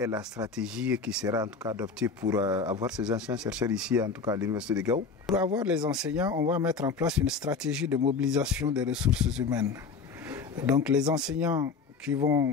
la stratégie qui sera en tout cas adoptée pour avoir ces enseignants-chercheurs ici, en tout cas à l'université de Gao? Pour avoir les enseignants, on va mettre en place une stratégie de mobilisation des ressources humaines. Donc les enseignants qui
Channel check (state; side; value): quieter; right; 5.0 dB